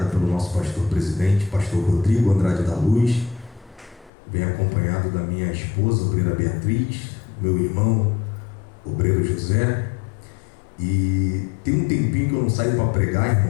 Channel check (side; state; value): right; drops out; at 4.1 s